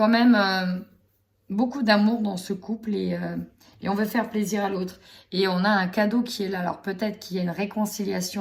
même beaucoup d'amour dans ce couple et on veut faire plaisir à l'autre. Et on a un cadeau qui est là. Alors peut-être qu'il y a une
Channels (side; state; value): both; identical; correlation 1.00